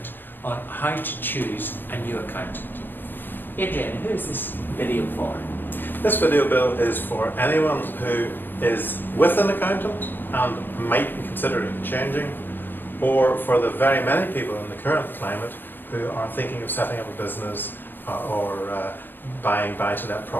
on how to choose a new accountant. Adrian, who is this video for? This video, Bill, is for anyone who is with an accountant and might be considering changing, or for the very many people in the current climate who are thinking of setting up a business or buying buy-to-let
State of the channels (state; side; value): late; right; 0.094 ms